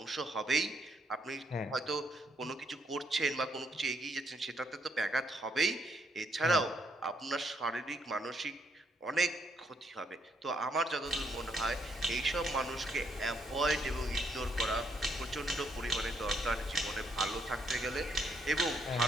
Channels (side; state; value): both; normal; correlation 0.72